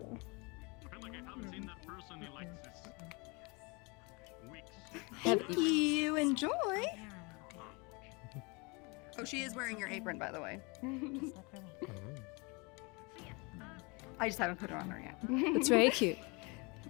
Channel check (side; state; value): right; quieter; 29.0 dB